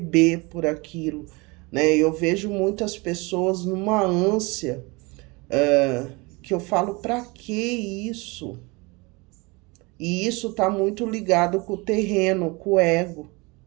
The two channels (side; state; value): left; quieter; 26.5 dB